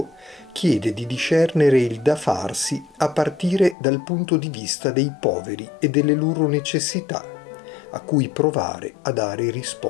chiede di discernere il da farsi a partire dal punto di vista dei poveri e delle loro necessità, a cui provare a dare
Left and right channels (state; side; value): drops out; right; at 3.8 s